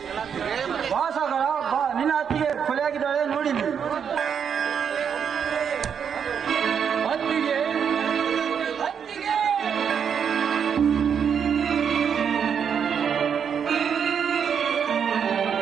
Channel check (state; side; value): quieter; left; 7.5 dB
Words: ವಾಸಗಳ ನಿನ್ನ ಅತ್ತಿಗೆ ಕೊಲೆಯಾಗಿದ್ದಾಳೆ ನೋಡಿಲಿ. ಅತ್ತಿಗೆ ಅತ್ತಿಗೆ